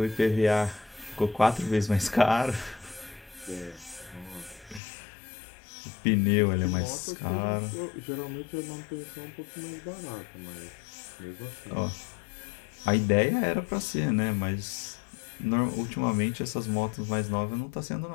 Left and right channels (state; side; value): drops out; right; at 4.8 s